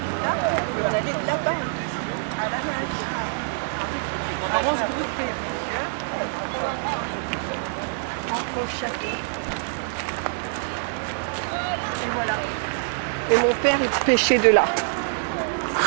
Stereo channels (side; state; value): left; silent; 62 dB below the other